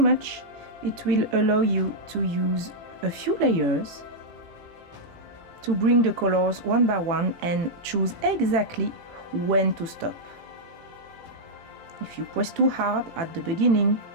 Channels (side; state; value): left; late; 18 ms